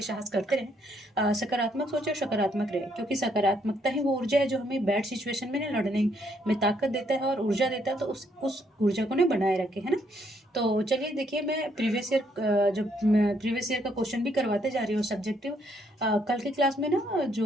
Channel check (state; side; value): normal; both; correlation 0.71